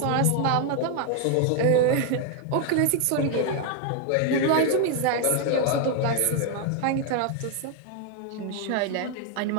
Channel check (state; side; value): different; both; correlation 0.00